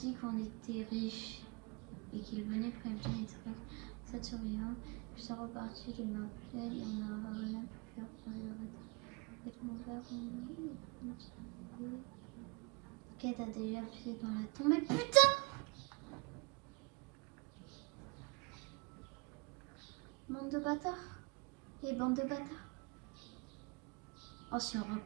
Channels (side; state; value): left; quieter; 27.7 dB